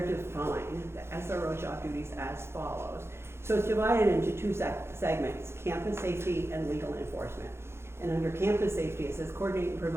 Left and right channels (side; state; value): left; late; 0.12 ms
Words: define the SRO job duties as follows. So it's divided into 2 segments, campus safety and legal enforcement. And under campus safety, it says coordinate and